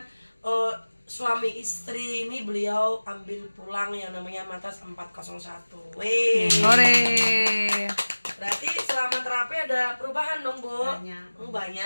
suami istri ini beliau ambil pulang yang namanya Matas 401. Wih. Hore. Berarti selama terapi ada perubahan dong Bu?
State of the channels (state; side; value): inverted; both; correlation -1.00